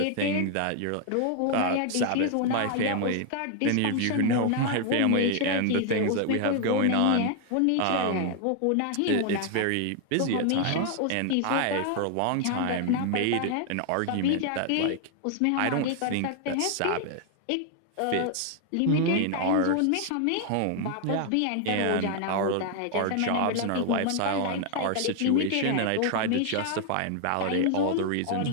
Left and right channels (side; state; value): both; different; correlation 0.00